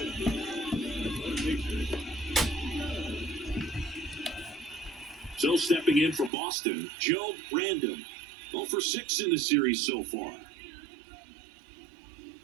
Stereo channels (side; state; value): left; drops out; at 6.3 s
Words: So stepping in for Boston, Joe Random. 0 for 6 in the series so far.